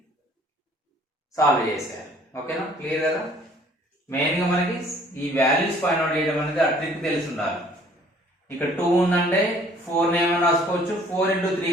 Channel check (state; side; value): normal; both; correlation 0.57